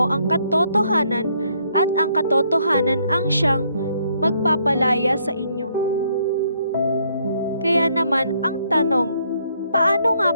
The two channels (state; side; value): inverted; both; correlation -0.70